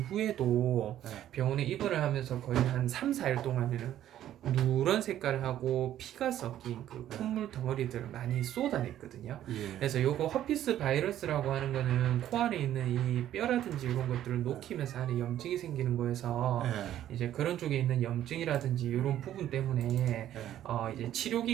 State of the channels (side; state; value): left; quieter; 12.0 dB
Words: 병원에 입원을 하면서 거의 한 3, 4일 동안에는 누런 색깔을 하고 피가 섞인 그 콧물 덩어리들을 많이 쏟아냈거든요. 예. 그래서 요거 허피스 바이러스라고 하는 거는 코 안에 있는 이 뼈라든지 이런 것들을 녹히면서 안에 염증이 생기는 거여서 이제 그런 쪽에 있는 염증이라든지 이런 부분 때문에 이제 치료